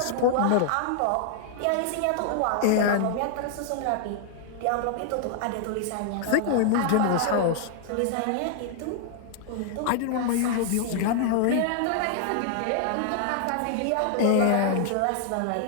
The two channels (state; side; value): different; both; correlation 0.00